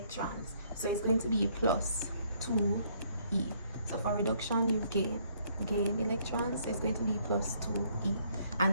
so it's going to be plus 2e. So for reduction, you gain electrons, so it's going to be plus 2e,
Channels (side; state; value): both; inverted; correlation -0.66